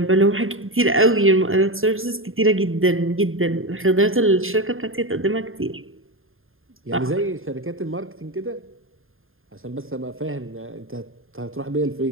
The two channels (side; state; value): left; late; 0.60 ms